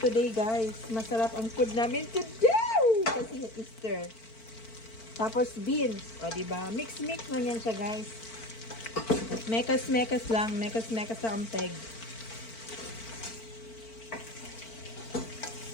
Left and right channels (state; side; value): late; right; 4.5 ms